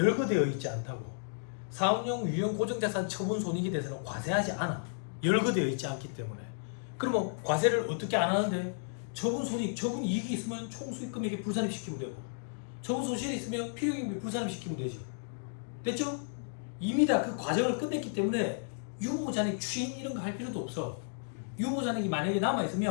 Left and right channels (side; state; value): right; silent; digital silence